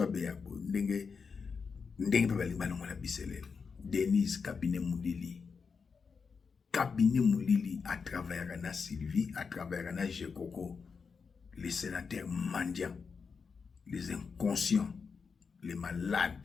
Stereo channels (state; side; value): quieter; right; 5.4 dB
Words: Beyabo ndenge pe balongola biselele Denise cabinet Moulili à travers na Sylvie à travers na Jekoko les sénateurs mendiants les inconscients les